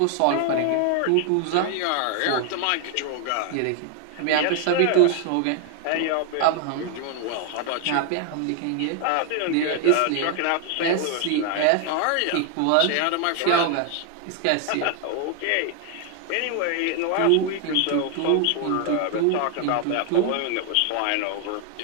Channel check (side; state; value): both; different; correlation 0.00